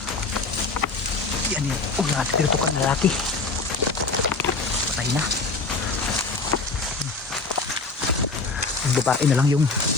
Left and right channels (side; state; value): right; quieter; 4.0 dB